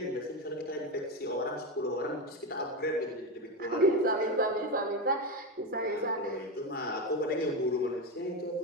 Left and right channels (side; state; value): both; normal; correlation 0.14